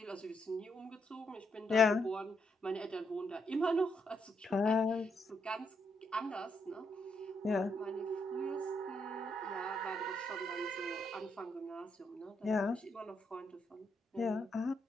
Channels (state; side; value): normal; both; correlation 0.78